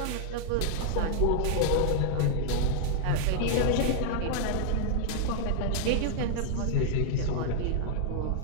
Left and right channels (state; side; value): different; both; correlation -0.01